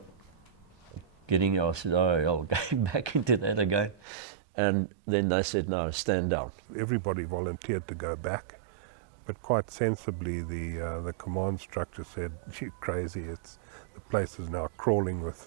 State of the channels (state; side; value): drops out; left; at 4.0 s